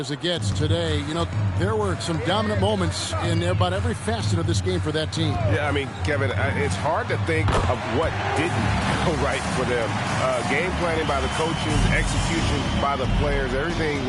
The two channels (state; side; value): identical; both; correlation 1.00